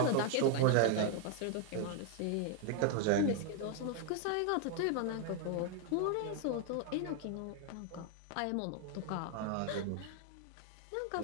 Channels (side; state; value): both; different; correlation 0.00